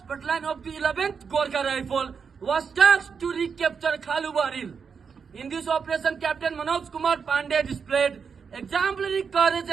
Battalion of the 11th Gorkha Rifle was tasked to recapture Khalubar Hill. In this operation, Captain Manoj Kumar Pandey displayed exemplary courage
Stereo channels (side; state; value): left; quieter; 6.1 dB